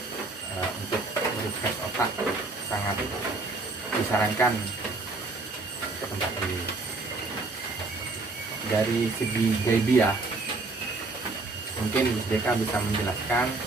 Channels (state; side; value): quieter; left; 3.5 dB